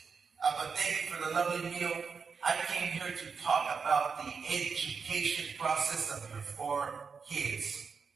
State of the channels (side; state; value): left; quieter; 5.5 dB